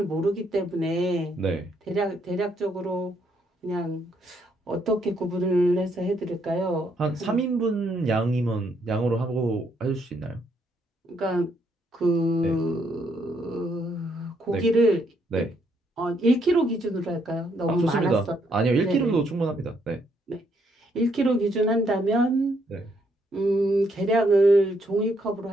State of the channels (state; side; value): normal; both; correlation 0.73